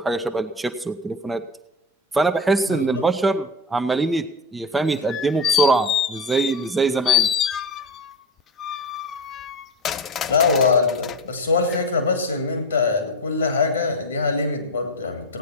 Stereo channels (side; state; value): both; normal; correlation 0.22